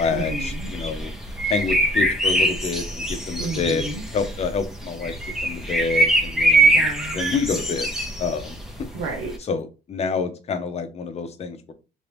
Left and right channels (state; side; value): normal; both; correlation 0.55